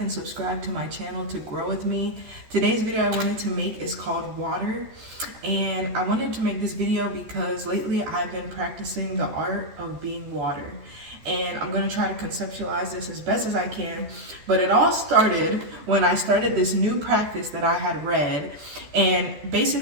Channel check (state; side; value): late; left; 14 ms